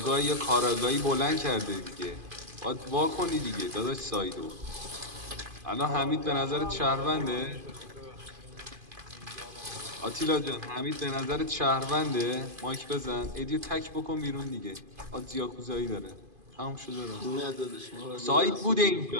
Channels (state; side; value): late; left; 2.5 ms